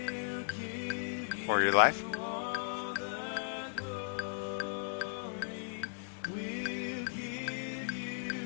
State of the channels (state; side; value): silent; right; 54 dB below the other